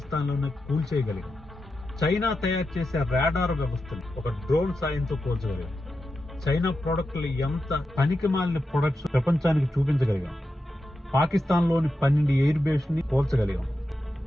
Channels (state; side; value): normal; both; correlation 0.89